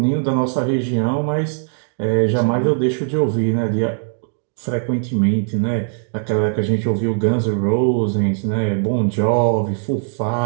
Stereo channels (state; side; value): silent; left; digital silence